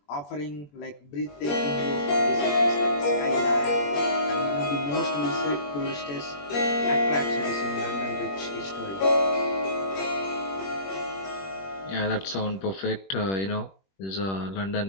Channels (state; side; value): late; right; 21 ms